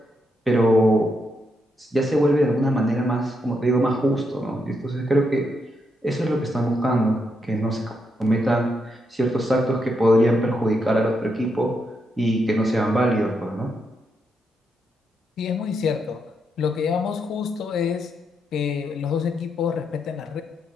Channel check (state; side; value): normal; both; correlation 0.81